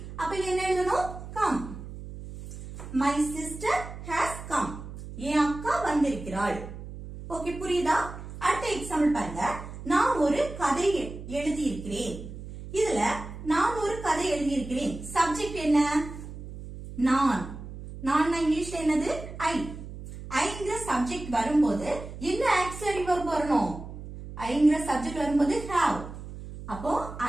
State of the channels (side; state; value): right; noise; hum, 12 dB below the sound